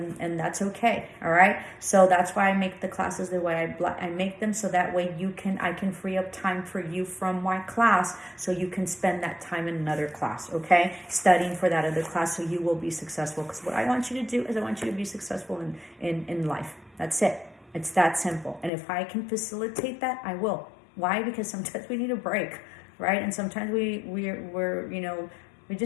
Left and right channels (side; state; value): right; drops out; at 18.7 s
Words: and that's okay, all right? So that's why I make the classes the way I make them, so that way I can free up time for you from my class, so you can spend that time in another class, okay? Studying for that other class, so you will be successful. Because what I want you to do is I want you to be successful in life. That's it. It's that simple. And if I can facilitate that, I will. Why? Because sometimes we need a break, right? And sometimes we